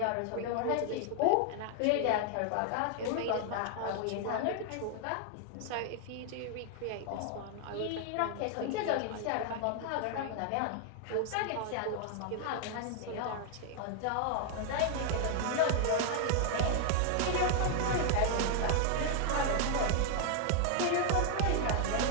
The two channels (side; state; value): both; different; correlation 0.00